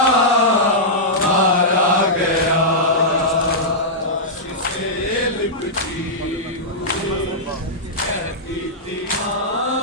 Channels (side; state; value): both; normal; correlation -0.11